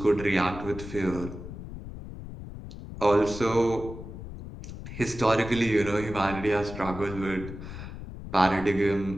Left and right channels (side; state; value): left; noise; rumble, 11 dB below the sound